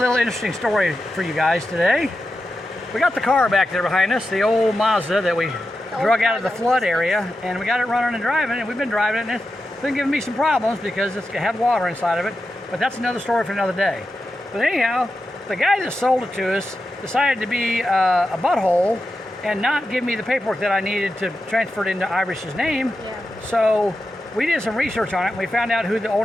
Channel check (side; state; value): both; normal; correlation 0.90